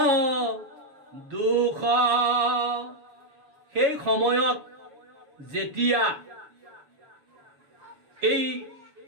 দুখ। সেই সময়ত যেতিয়া এই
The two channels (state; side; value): late; left; 7.3 ms